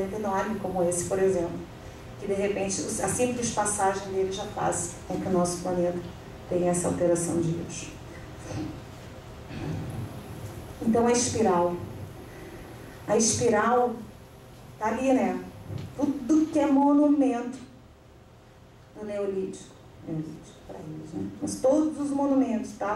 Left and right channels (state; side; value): identical; both; correlation 1.00